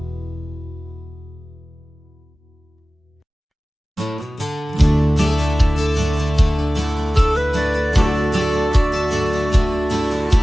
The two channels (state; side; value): normal; both; correlation 0.97